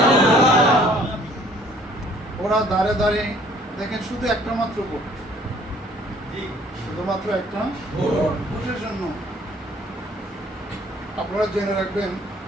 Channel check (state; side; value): normal; both; correlation 0.57